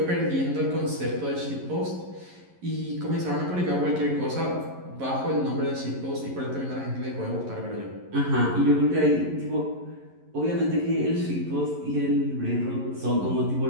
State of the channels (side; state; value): left; late; 11 ms